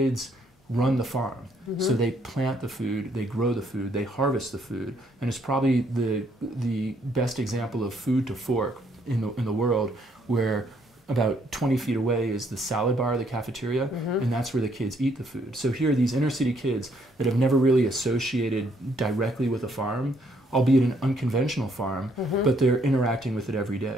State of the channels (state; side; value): normal; both; correlation 0.69